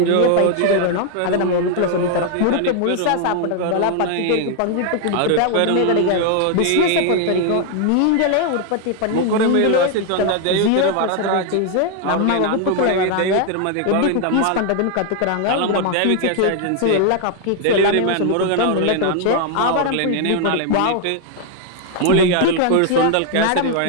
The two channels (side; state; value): both; different; correlation 0.00